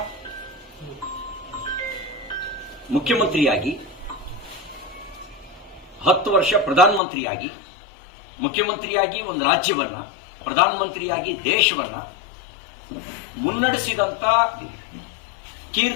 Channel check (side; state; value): right; drops out; at 7.0 s